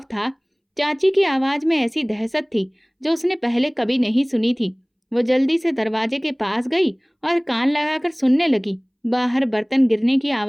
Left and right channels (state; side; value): identical; both; correlation 1.00